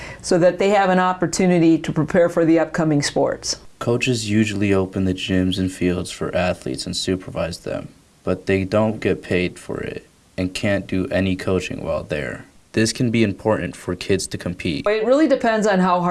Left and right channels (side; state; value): both; identical; correlation 1.00